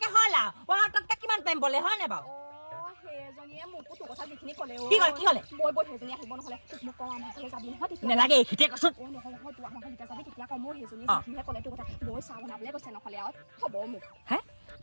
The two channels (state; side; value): inverted; both; correlation -1.00